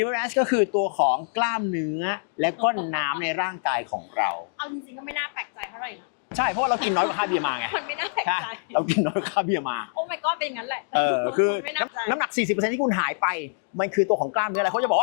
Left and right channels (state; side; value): silent; right; digital silence